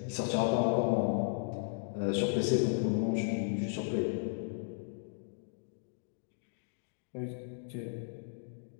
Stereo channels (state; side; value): silent; right; digital silence